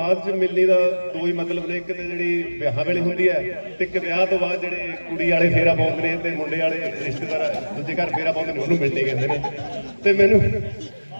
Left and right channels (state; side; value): inverted; both; correlation -1.00